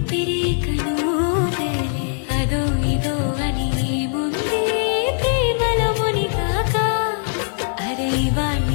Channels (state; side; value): silent; right; digital silence